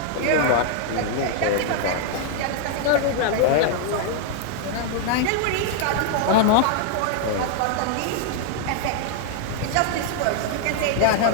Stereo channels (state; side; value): different; both; correlation 0.00